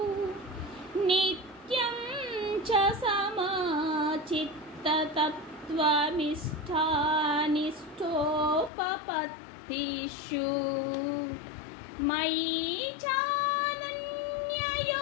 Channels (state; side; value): drops out; right; at 8.7 s